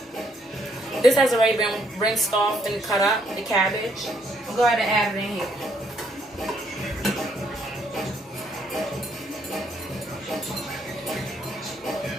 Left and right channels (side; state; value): both; normal; correlation 0.71